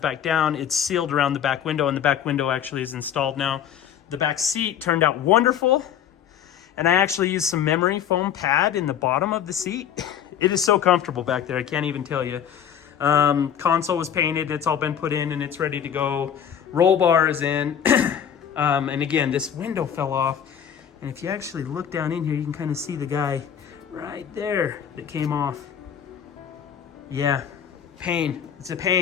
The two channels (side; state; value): right; quieter; 8.9 dB